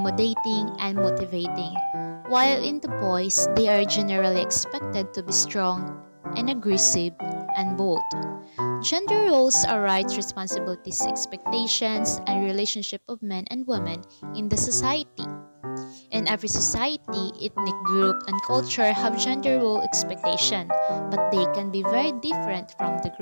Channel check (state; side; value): inverted; both; correlation -1.00